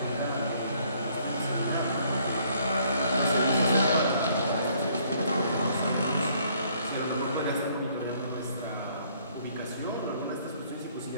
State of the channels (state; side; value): inverted; both; correlation -0.64